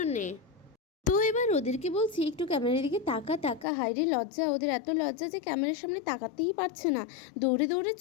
তো এবার ওদেরকে বলছি একটু ক্যামেরার দিকে তাকা তাকা, হাইরে লজ্জা, ওদের এত লজ্জা যে ক্যামেরার সামনে তাকাতেই পারছে না, দৌড়ে দৌড়ে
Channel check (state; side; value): drops out; right; at 3.7 s